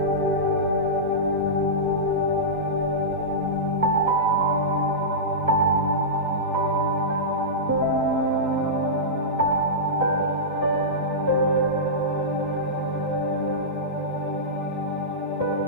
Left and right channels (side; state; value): both; normal; correlation -0.14